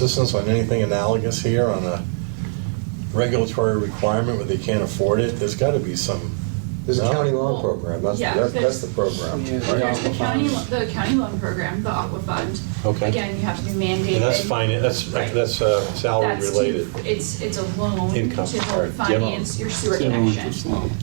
on anything analogous here on a regulatory requirement where they can't afford it? There's got to be some. There's a county loan program. That's the program. There's the county loan program, the Aqua Fund. Okay. Again, you have to be mandated. And that's fine. That's salary related. It's a loan Income, to help right. finance your sewer It's a loan, connection it's a loan.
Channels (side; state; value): left; silent; digital silence